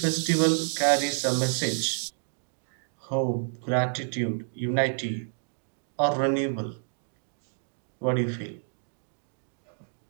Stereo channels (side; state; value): left; silent; digital silence